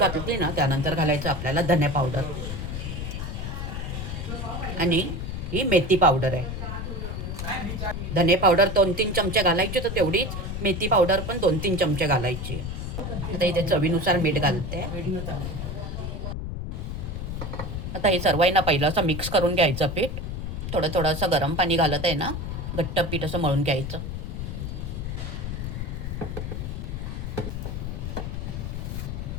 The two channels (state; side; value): noise; left; rumble, 5 dB below the sound